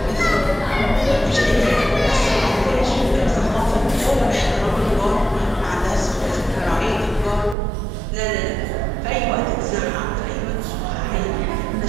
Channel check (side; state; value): left; drops out; at 7.6 s